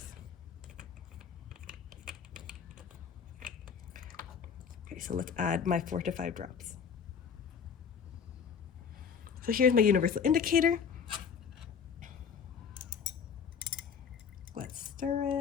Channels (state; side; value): quieter; right; 6.9 dB